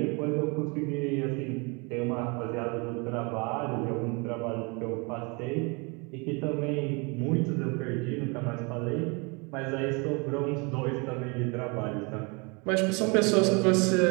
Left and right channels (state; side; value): quieter; left; 30.6 dB